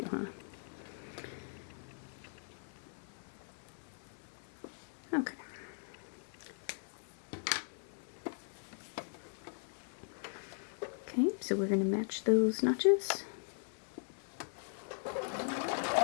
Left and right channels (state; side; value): silent; right; digital silence